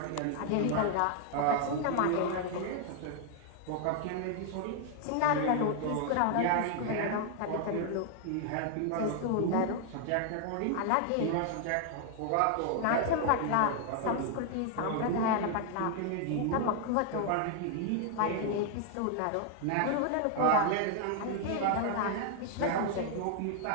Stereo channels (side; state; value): both; different; correlation 0.00